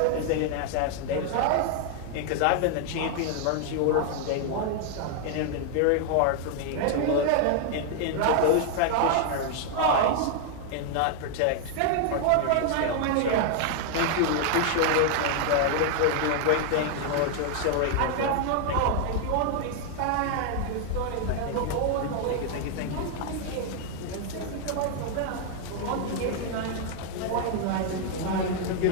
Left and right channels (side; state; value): both; different; correlation 0.00